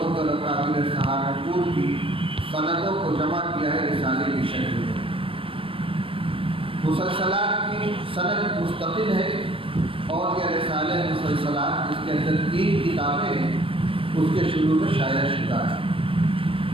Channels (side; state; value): left; late; 0.26 ms